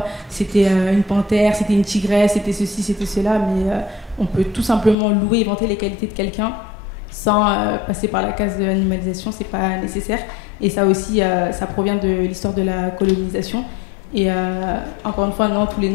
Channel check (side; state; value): right; drops out; at 5.0 s